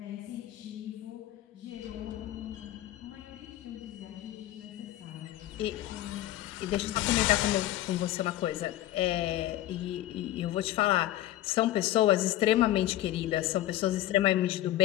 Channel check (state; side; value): quieter; right; 14.2 dB